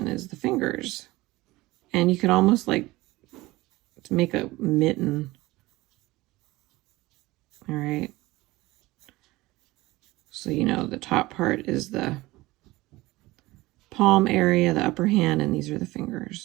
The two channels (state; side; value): quieter; left; 19.6 dB